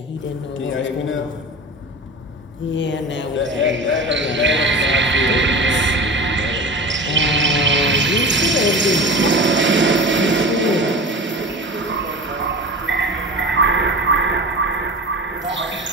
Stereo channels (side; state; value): both; normal; correlation 0.33